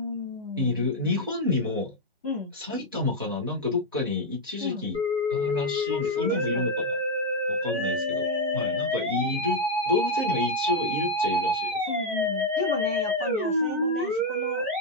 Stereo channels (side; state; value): both; normal; correlation 0.01